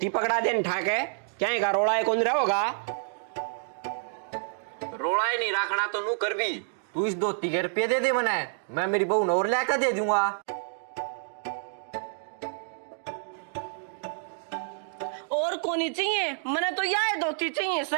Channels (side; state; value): left; silent; digital silence